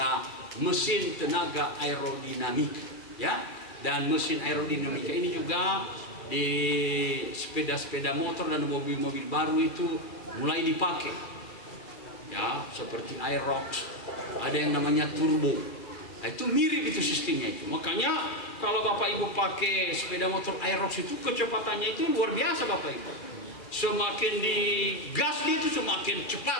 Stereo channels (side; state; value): right; late; 2.3 ms